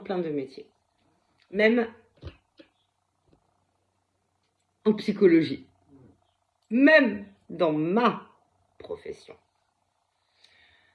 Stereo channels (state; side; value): identical; both; correlation 1.00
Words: de métiers. Même en psychologie. Même dans ma profession.